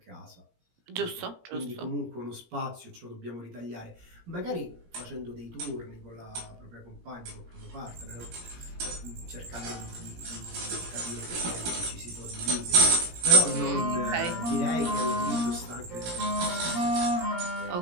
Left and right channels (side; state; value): left; late; 17 ms